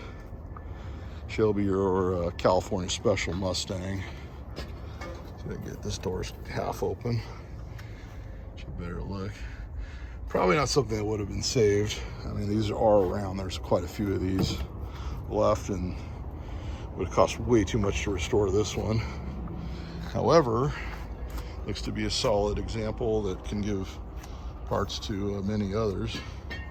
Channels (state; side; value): identical; both; correlation 1.00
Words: Shelby or California Special Mustang. So I get this door's half open. Should better look. Probably not something that would have been saved. I mean, these are around. There's quite a few of these left, and would have cost way too much to restore this one. However, looks to be a solid example that can give parts to many others.